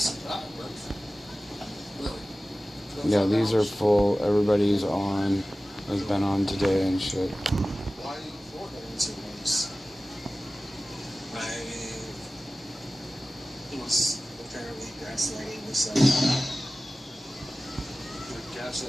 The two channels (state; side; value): normal; both; correlation 0.96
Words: Yeah, these are full. Everybody's on. Has been on today and shit. was apparently gaslighting himself.